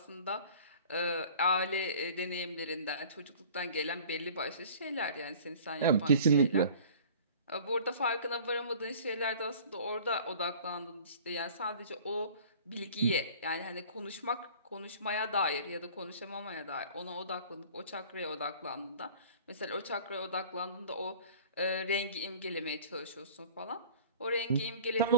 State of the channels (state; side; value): inverted; both; correlation -0.47